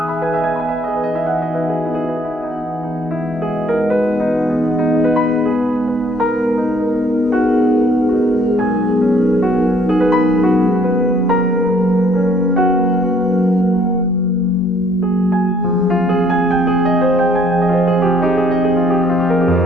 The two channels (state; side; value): normal; both; correlation 0.64